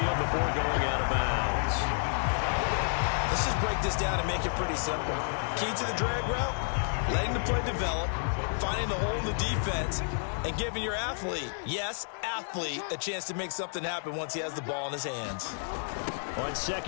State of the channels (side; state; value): right; silent; 57 dB below the other